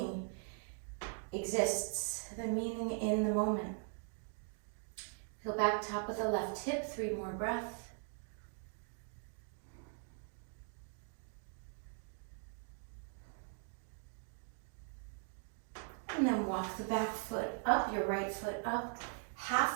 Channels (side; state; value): left; silent; 51 dB below the other